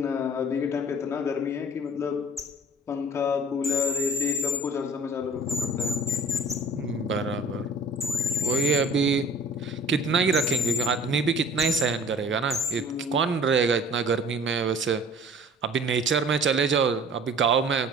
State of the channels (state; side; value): normal; both; correlation 0.47